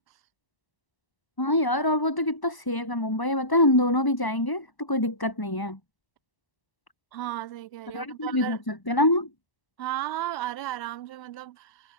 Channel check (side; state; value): right; late; 1.0 ms